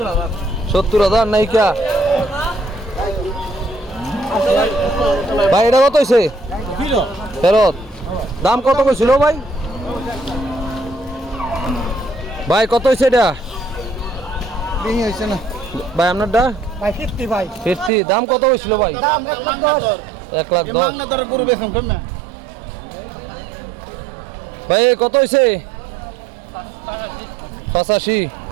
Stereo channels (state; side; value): drops out; left; at 17.9 s